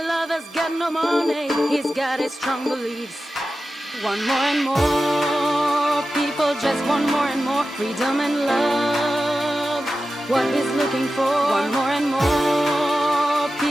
lover's got no money, he's got his strong beliefs. Want more and more, people just want more and more freedom and love. What he's looking for, want more and more,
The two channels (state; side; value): normal; both; correlation 0.93